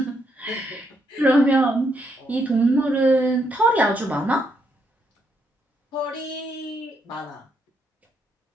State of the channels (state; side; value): normal; both; correlation 0.76